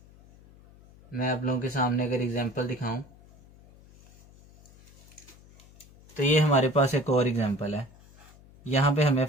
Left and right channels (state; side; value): noise; left; hum, 25 dB below the sound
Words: मैं आप लोगों के सामने अगर एग्जांपल दिखाऊं तो ये हमारे पास एक और एग्जांपल है। यहाँ पे हमें